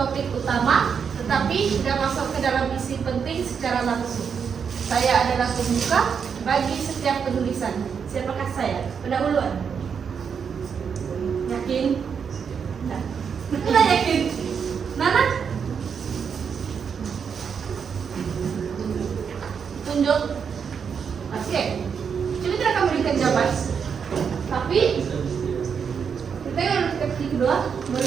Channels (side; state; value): left; quieter; 6.7 dB